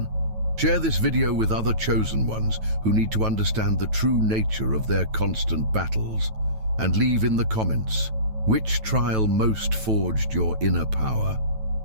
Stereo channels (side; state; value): left; late; 9.2 ms